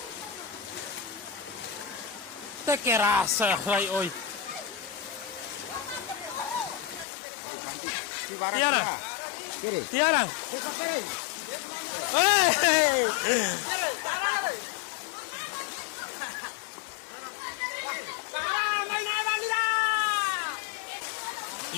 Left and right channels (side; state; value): right; drops out; at 7.1 s